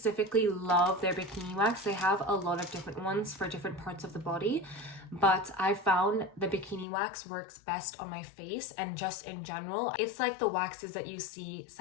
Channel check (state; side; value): drops out; right; at 6.9 s